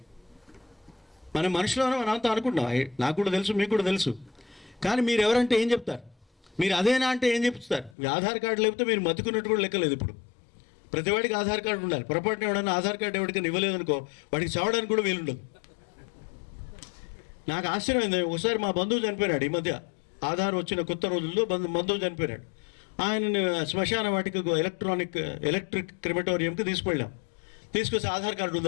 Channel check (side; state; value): right; drops out; at 8.0 s